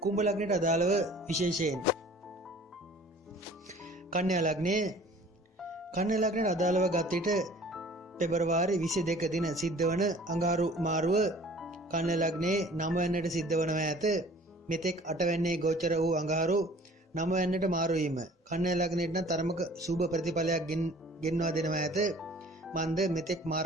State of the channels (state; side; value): normal; both; correlation 0.50